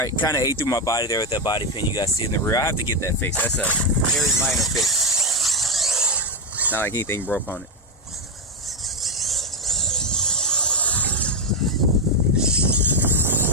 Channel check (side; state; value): both; normal; correlation 0.06